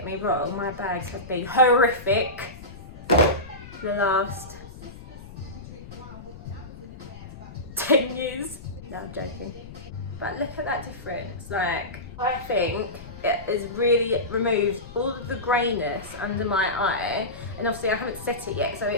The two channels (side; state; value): left; noise; rumble, 15 dB below the sound